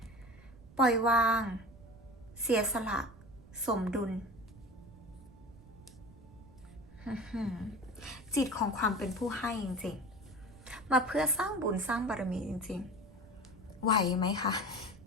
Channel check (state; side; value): noise; right; rumble, 21 dB below the sound